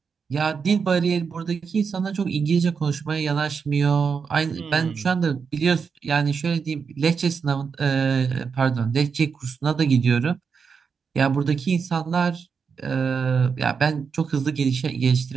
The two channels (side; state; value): left; quieter; 5.8 dB